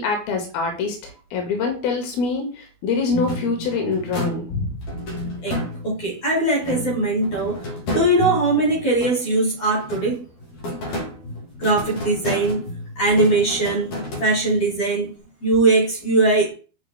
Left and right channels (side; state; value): right; late; 12 ms